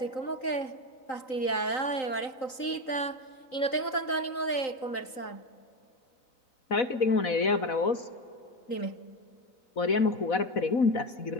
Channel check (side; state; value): right; late; 3.9 ms